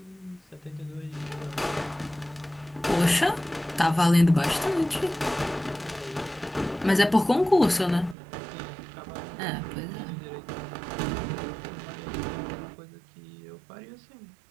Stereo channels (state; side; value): drops out; left; at 8.2 s